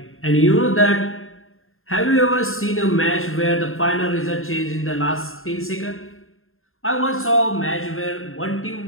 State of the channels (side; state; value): right; late; 0.61 ms